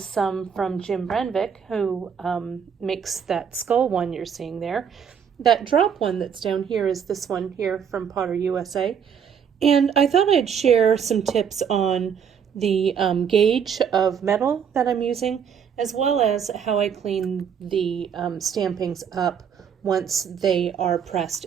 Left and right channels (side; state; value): left; quieter; 7.5 dB